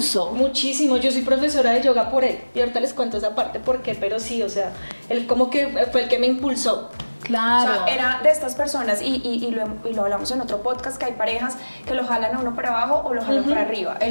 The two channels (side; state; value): both; inverted; correlation -1.00